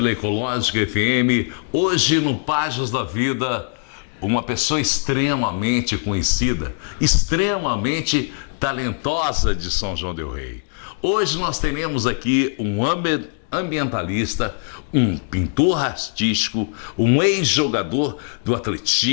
Ecológica FM. Hoje no Páginas da Vida, uma pessoa extremamente conhecida, extremamente talentosa de São João del Rei. Hoje nós teremos aqui um ambientalista, um pintor artístico, um ex-jogador do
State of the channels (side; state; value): right; silent; 61 dB below the other